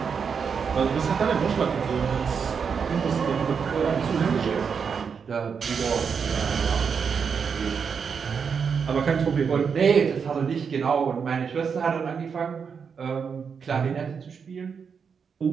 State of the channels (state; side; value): quieter; left; 6.3 dB